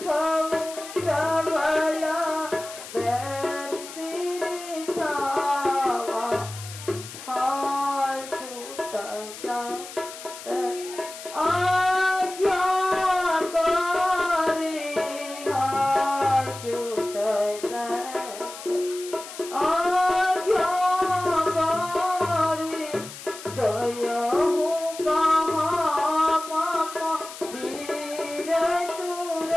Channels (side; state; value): left; noise; hiss, 13 dB below the sound